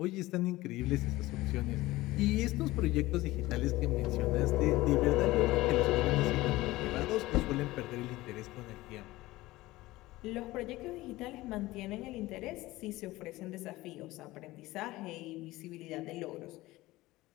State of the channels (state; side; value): quieter; right; 18.5 dB